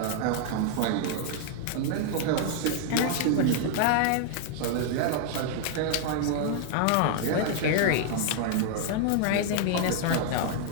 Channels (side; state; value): both; different; correlation 0.00